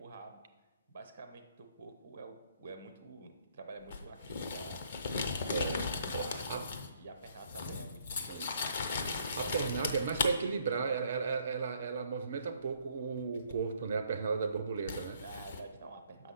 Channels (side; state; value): both; inverted; correlation -0.65